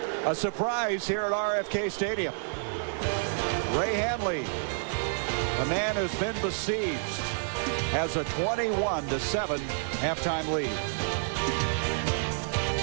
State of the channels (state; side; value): silent; left; digital silence